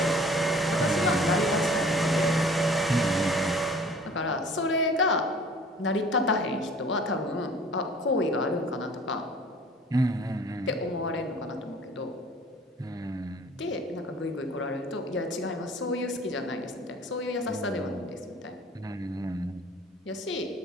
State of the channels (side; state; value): both; normal; correlation 0.49